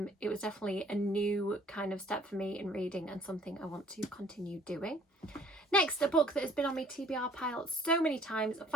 it was definitely a new kind of step for me in reading, and something I want to continue doing. Next, a book that has been on my TBR pile so many times. I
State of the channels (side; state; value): both; normal; correlation 0.58